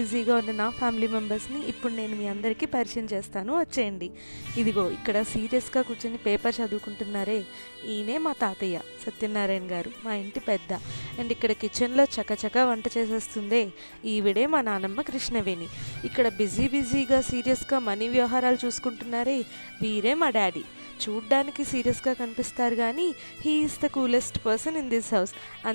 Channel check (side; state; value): both; inverted; correlation -1.00